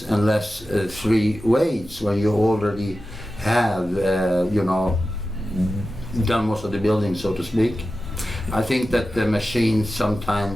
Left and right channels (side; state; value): both; normal; correlation 0.93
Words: and less free weights when you already have, done most of the building, so to speak. I think that the machines